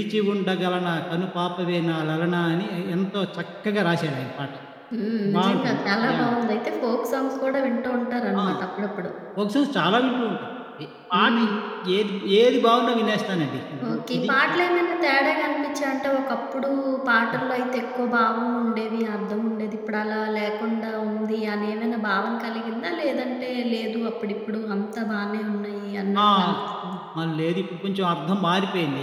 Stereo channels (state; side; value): identical; both; correlation 1.00